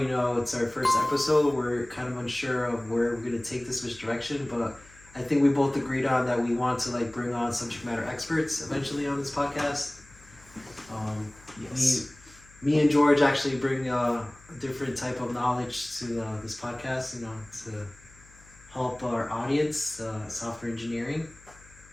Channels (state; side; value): noise; left; hum, 25 dB below the sound